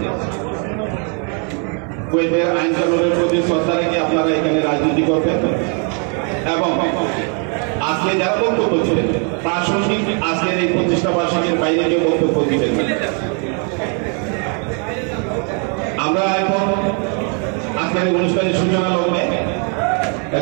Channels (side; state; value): left; quieter; 38.5 dB